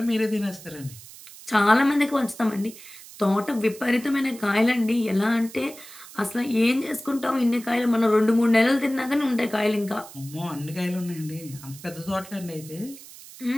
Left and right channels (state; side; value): noise; right; hiss, 17 dB below the sound